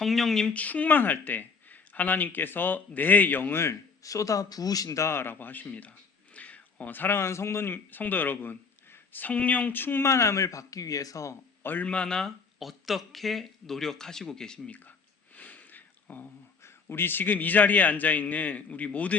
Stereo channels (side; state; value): right; quieter; 5.1 dB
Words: 충만할 때 하나님께서 내 영을 쏟아 부으신다라고 하십니다. 사랑하는 성도 여러분, 성령 충만함을 받기 위해서 얼마나 어떻게 노력하시고 계십니까? 우리 지금 이 자리에 앉아 있는 우리